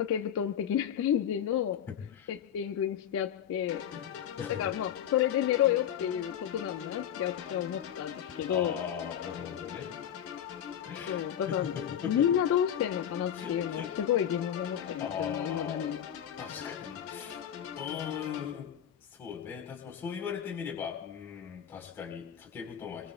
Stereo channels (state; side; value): quieter; right; 9.6 dB